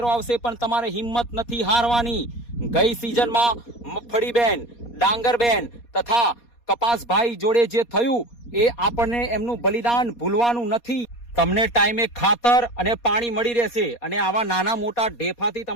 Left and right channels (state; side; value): late; right; 4.2 ms